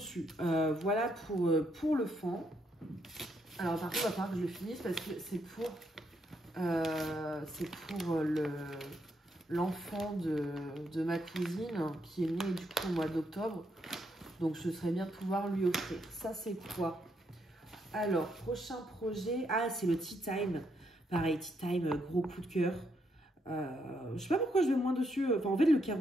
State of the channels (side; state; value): both; normal; correlation 0.77